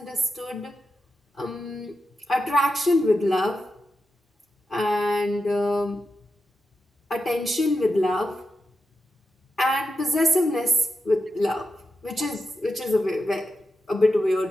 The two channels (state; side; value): normal; both; correlation 0.88